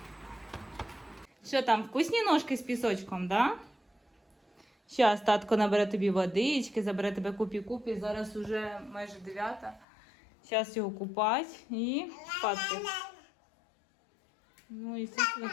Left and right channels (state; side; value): drops out; right; at 9.9 s